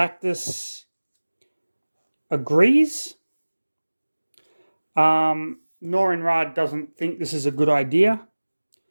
agrees. Norrin Radd doesn't think this is a good idea.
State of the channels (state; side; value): inverted; both; correlation -1.00